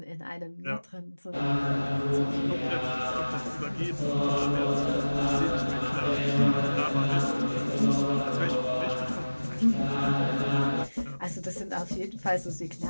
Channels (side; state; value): both; inverted; correlation -1.00